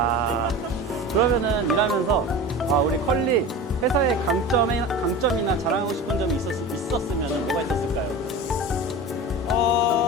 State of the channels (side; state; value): both; normal; correlation 0.31